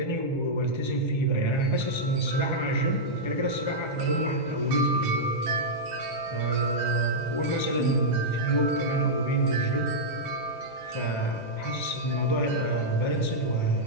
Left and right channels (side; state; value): right; late; 1.3 ms